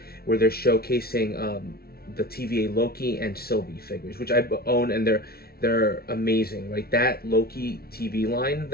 where they're showcasing the TVA Loki and Sylvie figures, which I own, and they're amazing, right? That Loki TV line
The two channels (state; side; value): late; right; 0.44 ms